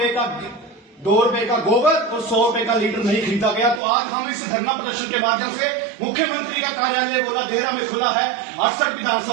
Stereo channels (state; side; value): drops out; left; at 3.8 s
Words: का गोबर और 100 रुपए का लीटर नहीं खरीदा गया। तो आज हम इस धरना प्रदर्शन के माध्यम से मुख्यमंत्री का कार्यालय बोला देहरा में खुला है। 68